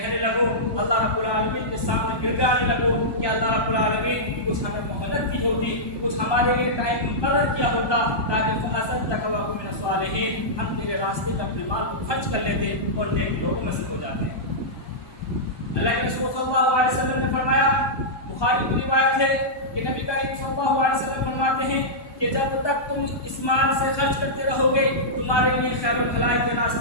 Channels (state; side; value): late; right; 1.2 ms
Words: لگو، اللہ رب العالمین کے سامنے گر جانے لگو کہ اللہ رب العالمین کچھ ہمیں مہلت دی ہوتی، کچھ ہمارے لیے ٹائم مقرر کیا ہوتا تاکہ فَأَصَدَّقَ وَأَكُن مِّنَ الصَّالِحِينَ، ہم تیرے راستے میں اپنے مال کو خرچ کر لیتے اور نیک لوگوں میں سے ہو جاتے ہیں۔ اللہ کے رسول صلی اللہ علیہ وسلم نے فرمایا، بخاری کی روایت ہے کہ نبی کریم صلی اللہ علیہ وسلم فرماتے ہیں کہ جب تک تم اس مال سے خرچ کرتے رہو گے تمہارے لیے خیر و بھلائی کے